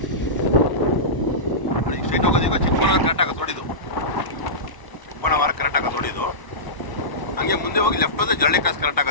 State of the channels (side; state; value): right; late; 1.0 ms